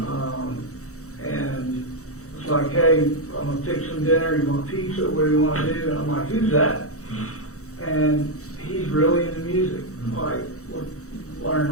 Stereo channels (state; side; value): late; right; 0.65 ms